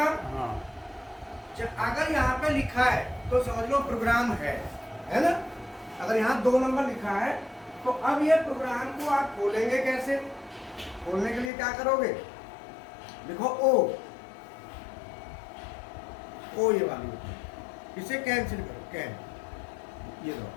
अगर यहाँ पे लिखा है तो समझ लो प्रोग्राम है ना। अगर यहाँ 2 नंबर लिखा है तो अब ये प्रोग्राम को आप खोलेंगे कैसे? खोलने के लिए क्या करोगे, देखो ओ ये वाली, इसे कैंसिल करो, कैन, ये दो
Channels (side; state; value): right; drops out; at 11.5 s